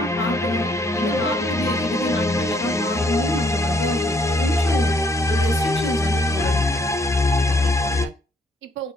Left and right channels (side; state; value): both; normal; correlation 0.68